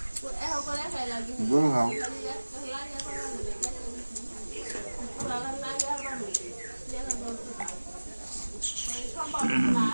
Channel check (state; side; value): inverted; both; correlation -1.00